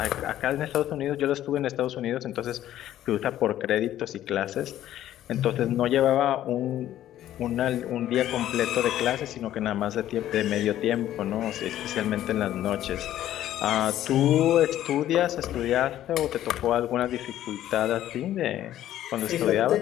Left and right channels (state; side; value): quieter; right; 12.6 dB